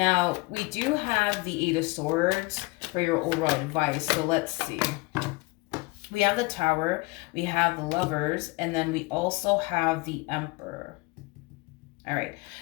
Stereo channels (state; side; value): quieter; right; 25.4 dB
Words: we do have the 8 of Swords for your overall advice. So let's see. We have the Tower, we have the Lovers, and then we also have the Emperor. All right.